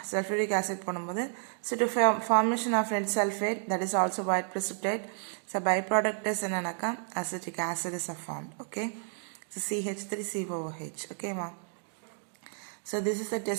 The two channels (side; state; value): left; silent; 57 dB below the other